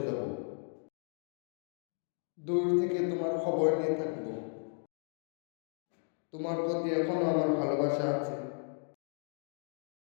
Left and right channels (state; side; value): silent; right; 54 dB below the other